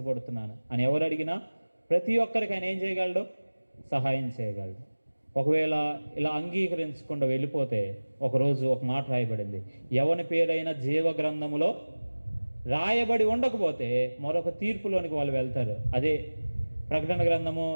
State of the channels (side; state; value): both; inverted; correlation -1.00